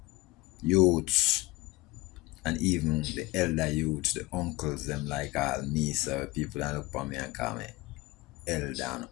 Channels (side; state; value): right; quieter; 20.8 dB